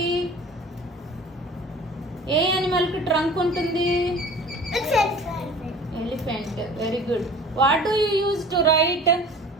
ఏ animal కి trunk ఉంటుంది? It's elephant. Very good. What do you use to write?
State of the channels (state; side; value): normal; both; correlation 0.44